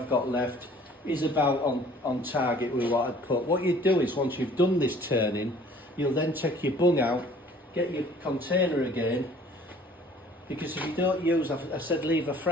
got left is about on target with what I'd put. What you do is, once you've done this turning, you'll then take your bung out, get your container again, because if you don't use, I said leave a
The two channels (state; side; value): normal; both; correlation 0.53